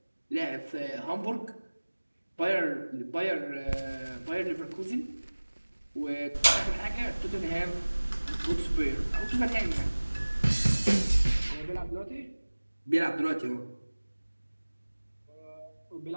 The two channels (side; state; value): both; inverted; correlation -1.00